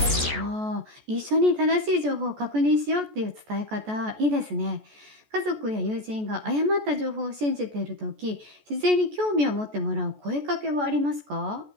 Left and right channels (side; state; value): left; late; 14 ms